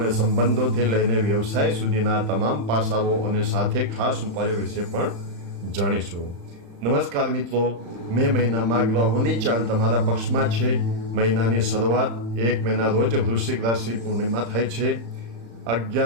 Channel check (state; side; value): late; left; 35 ms